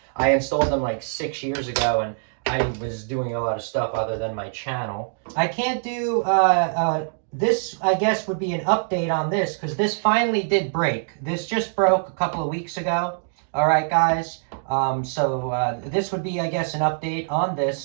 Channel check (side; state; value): left; silent; digital silence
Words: I installed them like 6 years ago and I was doing a lot of stuff other than my channel. I can't do, this I guess would be an update on this because this finally did break. This just broke a couple of weeks ago. All right, guys. This would be, I guess, an update on